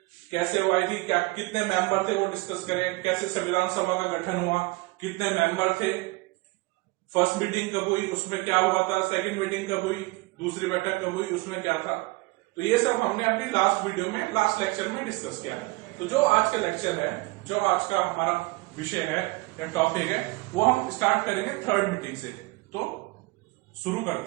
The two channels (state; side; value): quieter; left; 23.4 dB